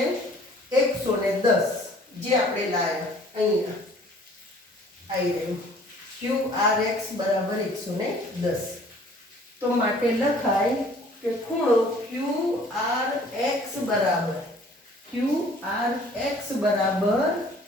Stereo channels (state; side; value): normal; both; correlation 0.54